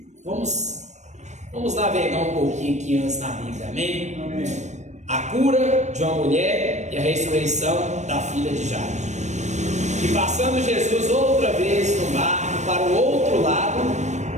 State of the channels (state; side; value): late; left; 0.34 ms